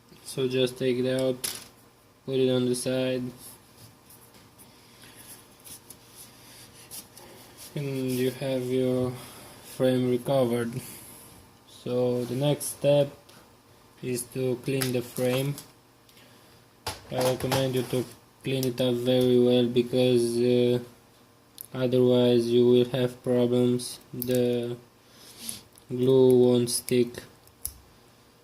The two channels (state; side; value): identical; both; correlation 1.00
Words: So just take it out, put it on the side, and you have your frame recovered. So the next step is to clean the frame. I recommend you to clean it up very well, because otherwise you will have problems. The glue won't stick